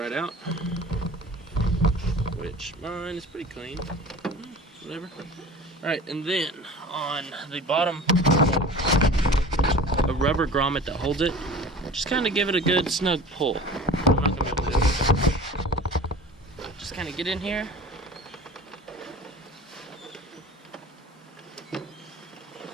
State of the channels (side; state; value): both; normal; correlation 0.39